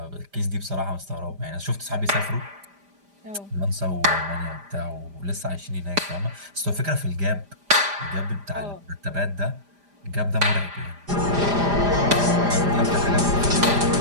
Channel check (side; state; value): left; late; 5.0 ms